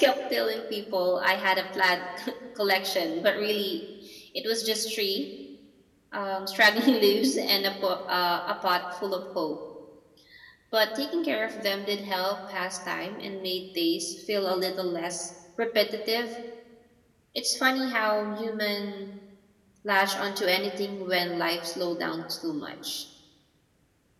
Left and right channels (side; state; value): both; identical; correlation 1.00